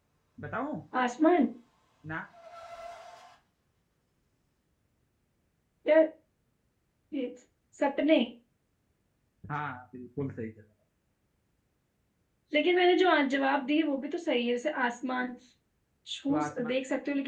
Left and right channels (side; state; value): both; identical; correlation 1.00